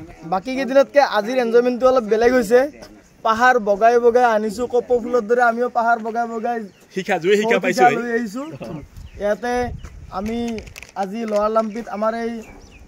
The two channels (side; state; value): both; identical; correlation 1.00